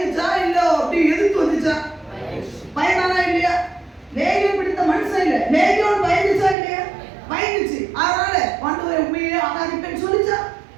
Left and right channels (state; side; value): drops out; left; at 6.6 s